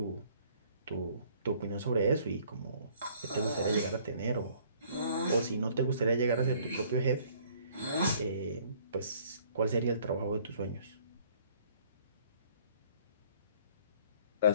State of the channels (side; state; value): both; inverted; correlation -0.59